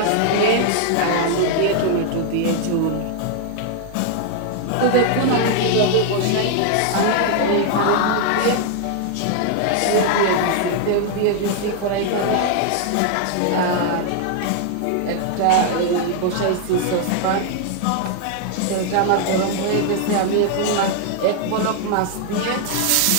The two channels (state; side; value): different; both; correlation 0.00